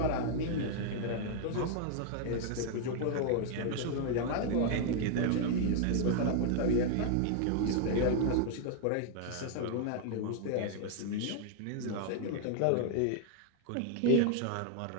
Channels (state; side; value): different; both; correlation 0.00